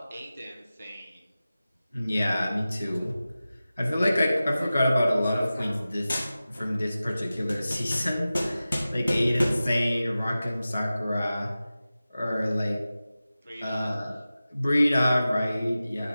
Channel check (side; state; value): both; inverted; correlation -0.95